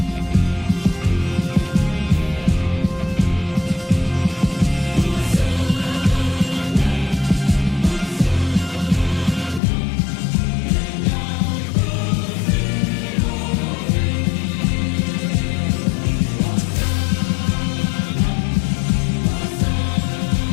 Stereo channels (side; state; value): right; drops out; at 9.6 s